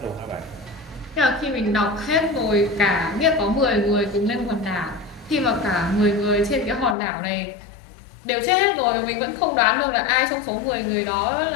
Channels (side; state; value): right; drops out; at 7.0 s